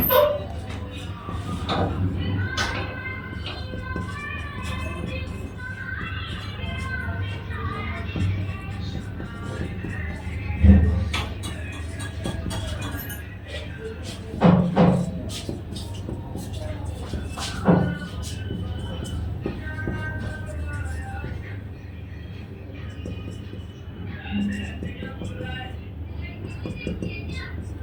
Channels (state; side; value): identical; both; correlation 1.00